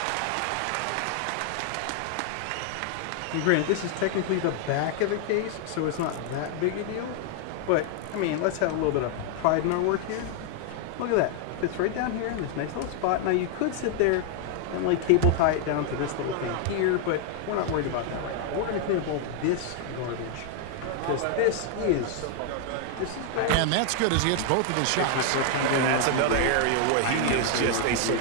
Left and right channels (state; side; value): different; both; correlation 0.00